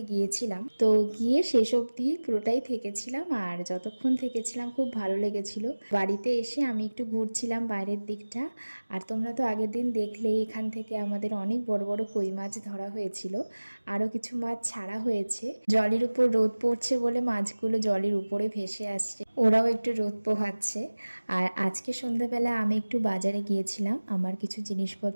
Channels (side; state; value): both; inverted; correlation -1.00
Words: গিয়েছিলাম, তো গিয়ে শেষ অবধি পুরোটাই থেকেছিলাম। আর যতক্ষণ থেকেছিলাম খুব ভালো লেগেছিল। বাড়িতে এসে আমি একটু ঘুরছিলাম বাইরের দিকটা। আর তোমরা তো আগের দিন দেখলেই এখান থেকে আমাদের অনেক বড় বড় কই মাছ ধরা হয়েছিল, আরও কিছু মাছ ছাড়া হয়েছে। জলের উপর রোদ পড়ছে বলে মাছগুলো জলের উপরে ভেসে আসছে, ওরাও একটু রোদ পোহাচ্ছে। আর আজকে সন্ধ্যাবেলা আমি একটু বাজারে গিয়েছিলাম, আমার কিছু